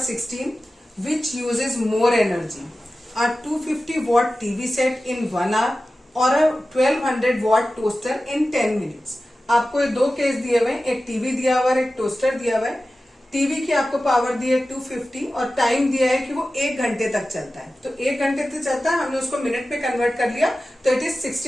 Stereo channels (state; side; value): normal; both; correlation 0.95